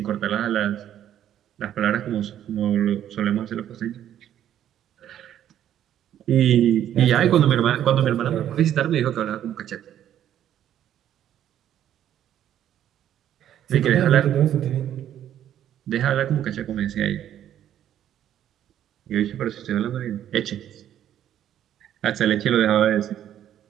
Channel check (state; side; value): quieter; left; 10.9 dB